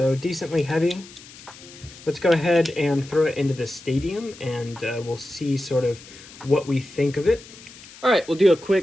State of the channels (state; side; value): noise; left; hiss, 19 dB below the sound